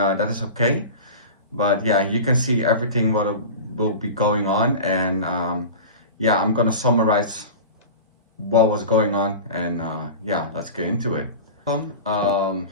is okay. But yeah, you can see everything what will be going on, and yeah, I'm gonna summarize what was going on, and yeah, let's get into it. So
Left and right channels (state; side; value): inverted; both; correlation -0.32